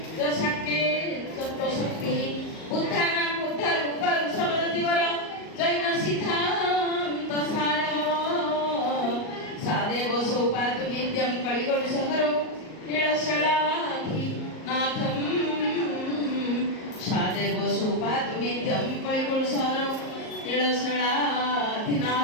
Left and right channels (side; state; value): right; late; 38 ms